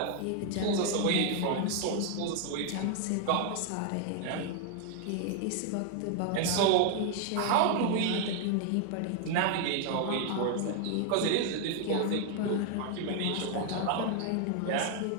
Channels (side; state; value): both; different; correlation 0.00